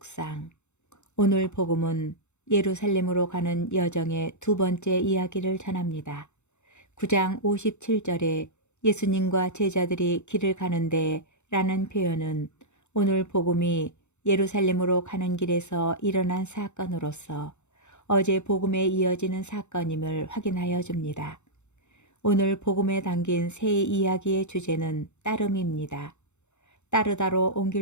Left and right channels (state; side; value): late; right; 0.83 ms